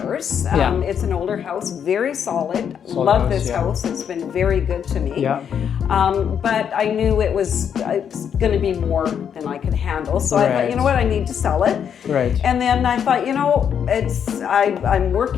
It's an older house, very solid. Love this house. It's been very good to me. Yeah. But I knew it's going to be more than I could handle. So I thought, you know what, I need to sell it. Right. And then I thought, you know, I'm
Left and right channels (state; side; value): quieter; right; 8.1 dB